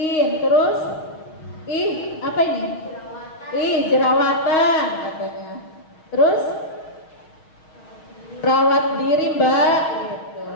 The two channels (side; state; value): right; late; 6.3 ms